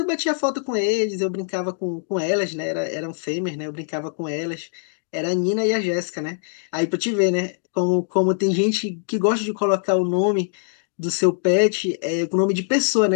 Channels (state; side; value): silent; right; digital silence